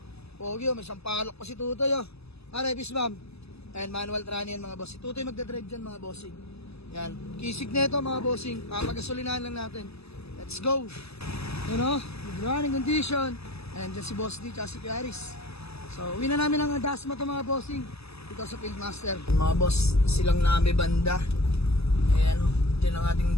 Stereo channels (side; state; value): right; late; 0.79 ms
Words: Pogi may sampalok pa si Tutoy Arebis ma'am. Ayan, manual trani yan mga boss. Si Tutoy magdadrive dyan mga bossing. Yan, kisig na ito mga bossing. Papagasolinahan lang natin. Let's go. Good running condition. Ayan, dyan si Boss D, tsaka si Aris. So, uwi na namin ang Dasma to mga bossing. Dito sa Fieldmaster. Mga boss, silang nami banda. Ayan, dyan ang